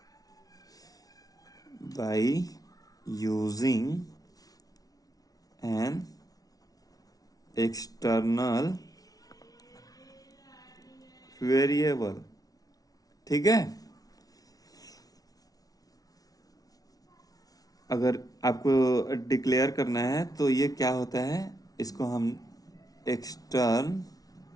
by using an external variable, ठीक है। अगर आपको डिक्लेयर करना है तो ये क्या होता है, इसको हम एक्सटर्न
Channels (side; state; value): right; late; 0.18 ms